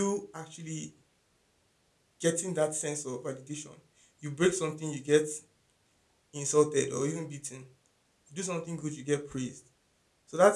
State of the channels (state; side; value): identical; both; correlation 1.00